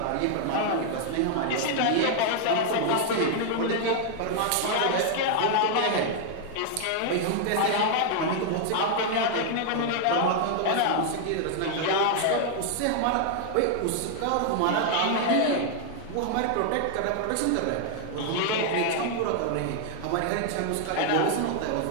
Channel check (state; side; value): different; both; correlation 0.00